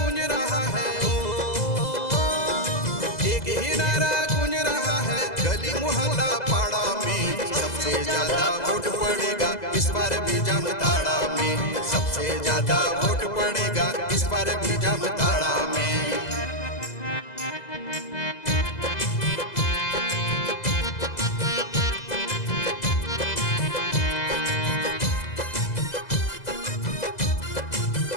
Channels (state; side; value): late; right; 2.0 ms